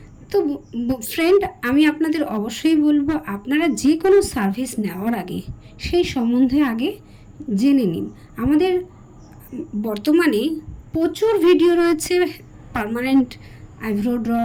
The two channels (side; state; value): both; identical; correlation 1.00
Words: তো ফ্রেন্ড, আমি আপনাদের অবশ্যই বলবো, আপনারা যে কোনো সার্ভিস নেওয়ার আগে সেই সম্বন্ধে আগে জেনে নিন। আমাদের বর্তমানে প্রচুর ভিডিও রয়েছে permanent eyebrow draw,